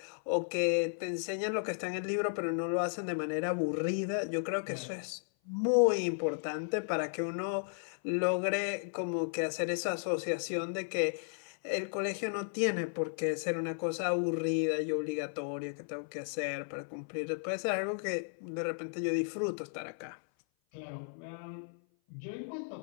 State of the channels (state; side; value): silent; right; 55 dB below the other